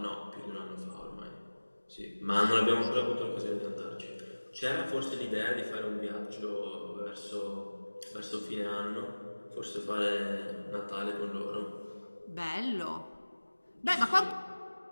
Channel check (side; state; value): both; inverted; correlation -1.00